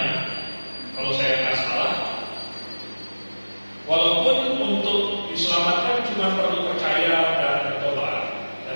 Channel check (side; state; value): both; inverted; correlation -1.00